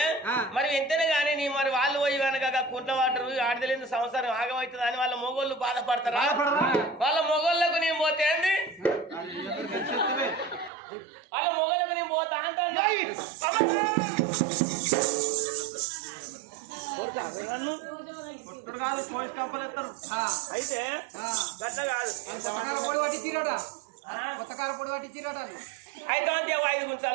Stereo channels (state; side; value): drops out; left; at 10.7 s